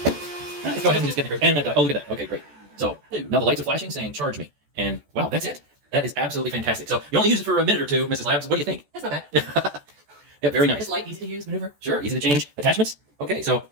Let's go ahead and just get the and oh, look at that. Okay, great. So now the lights are flashing saying charge me. And wow, that's it. That is absolutely fantastic. So you only use it for a minute or two, Mrs. Labs. What do you think? That's not bad. Yeah, very nice. It's light, easy to use, maneuver. Sure, easy to change attachments. Okay, so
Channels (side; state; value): left; late; 14 ms